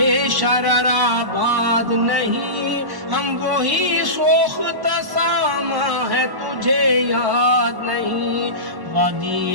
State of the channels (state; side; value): late; left; 1.1 ms